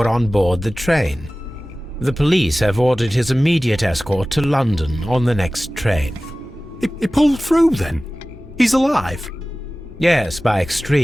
on board the train? The police have ordered his immediate escort to London on the next train. He pulled through, then? He's alive? Yes, by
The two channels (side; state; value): both; normal; correlation 0.97